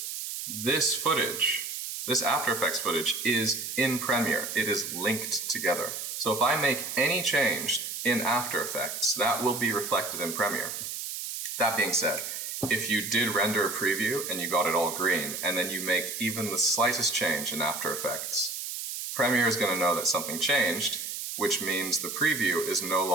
this footage, this After Effects footage is in Premiere. It is linked together. So if I make any change in After Effects, that will be reflected in Premiere. That being said, if you did render a preview and you got it all green, and then you make even the slightest change in After Effects, Premiere is going to know that something changed, which means the preview is no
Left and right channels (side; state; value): right; noise; hiss, 6 dB below the sound